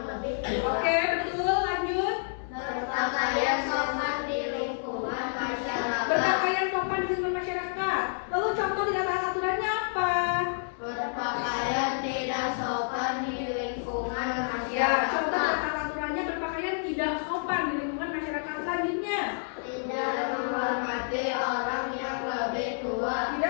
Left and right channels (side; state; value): right; silent; 59 dB below the other